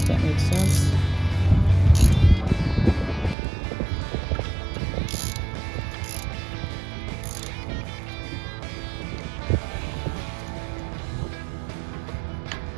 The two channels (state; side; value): drops out; left; at 3.4 s